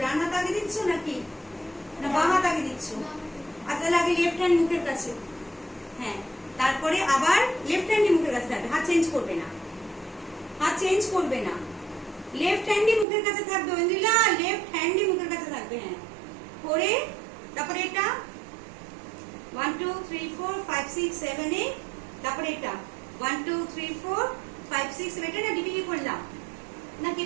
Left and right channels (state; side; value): drops out; left; at 13.1 s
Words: ডান হাত আগে দিচ্ছ নাকি না বাম হাত আগে দিচ্ছ? আচ্ছা, আগে লেফট হ্যান্ড মুখের কাছে। হ্যাঁ, তারপরে আবার লেফট হ্যান্ডই মুখের কাছে থাকবে, হাত চেঞ্জ করবে না, হাত চেঞ্জ করবে না, লেফট হ্যান্ডই মুখের কাছে থাকবে। ঐন্দ্রিলা, লেফট হ্যান্ডই মুখের কাছে থাকবে। হ্যাঁ, করে তারপরে এটা 1 2 3 4 5 6 7 8। তারপরে এটা 1 2 3 4 5 6 7। এটা না ডিপিকে করলাম না,